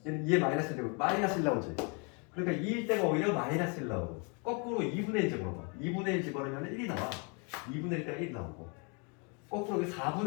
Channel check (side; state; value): right; quieter; 34.6 dB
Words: 얘는 2에 마이너스 되고 마이너스 1 나오지. 그러니까 2일 때가 오히려 마이너스 1 나오고 거꾸로 2분의 1 집어넣어. 2분의 1 집어넣으면 1이 나와. 2분의 1 때가 1이 나오고 거꾸로